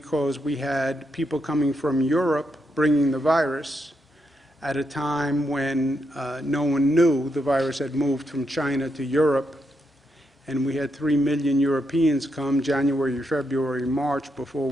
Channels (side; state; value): both; normal; correlation 0.81